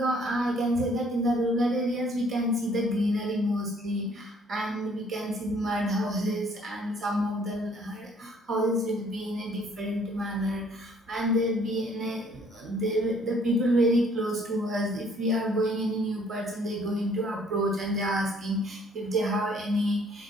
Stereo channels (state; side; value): normal; both; correlation 0.61